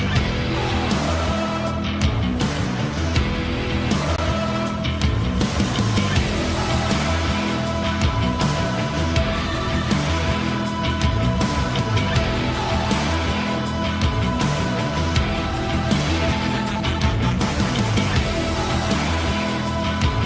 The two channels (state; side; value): identical; both; correlation 1.00